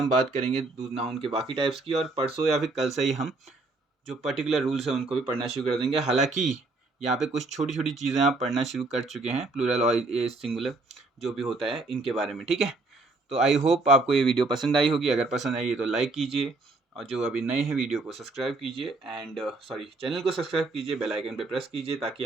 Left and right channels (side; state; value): left; quieter; 3.3 dB